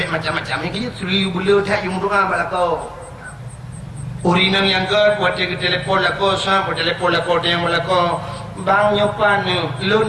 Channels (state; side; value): identical; both; correlation 1.00